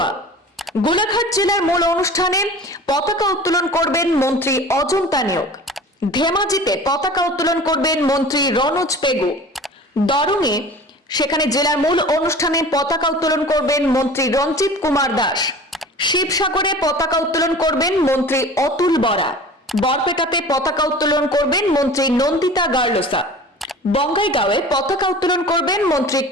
গোলাঘাট জেলার মূল অনুষ্ঠানে পতাকা উত্তোলন করবেন মন্ত্রী অজন্তা নিয়োগ। ধেমাজিতে পতাকা উত্তোলন করবেন মন্ত্রী রনোজ পেগু। দরঙে সেখানে জেলার মূল অনুষ্ঠানে পতাকা উত্তোলন করবেন মন্ত্রী রঞ্জিত কুমার দাস। শিবসাগরে পতাকা উত্তোলন করবেন মন্ত্রী অতুল বরা। বরপেটাতে পতাকা উত্তোলন করবেন মন্ত্রী নন্দিতা গার্লসা। বঙ্গাইগাঁওয়ে পতাকা উত্তোলন করবেন মন্ত্রী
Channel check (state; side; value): normal; both; correlation 0.40